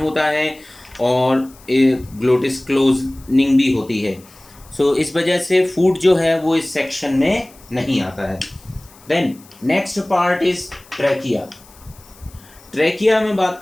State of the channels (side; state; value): left; noise; hiss, 25 dB below the sound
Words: है और ग्लोटिस क्लोजनिंग भी होती है। इस वजह से फूड जो है वो इस सेक्शन में नहीं आता है। Then next part is trachea. Trachea में बात